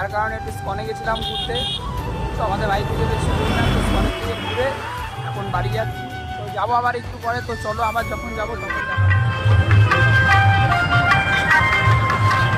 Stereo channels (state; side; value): identical; both; correlation 1.00